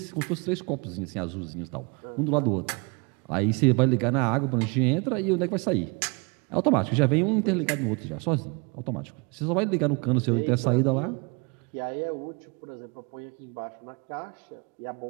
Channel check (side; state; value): left; quieter; 30.7 dB